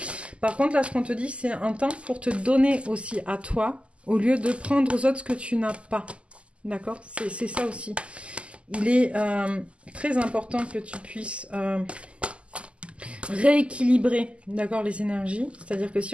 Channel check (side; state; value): left; late; 0.056 ms